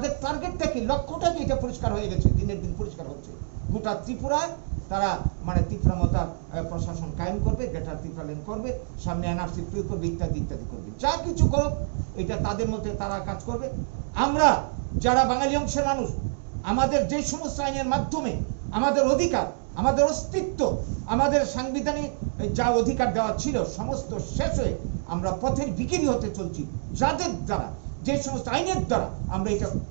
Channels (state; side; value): silent; left; digital silence